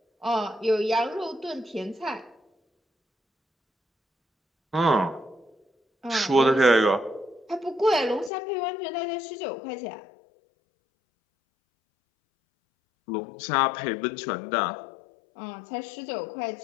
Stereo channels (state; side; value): drops out; right; at 8.3 s